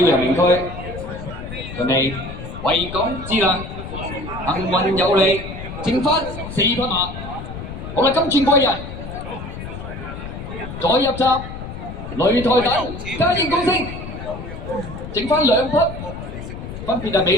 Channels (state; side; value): noise; left; rumble, 10 dB below the sound